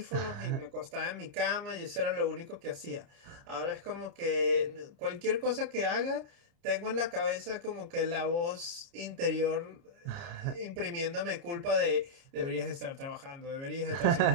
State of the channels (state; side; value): late; left; 29 ms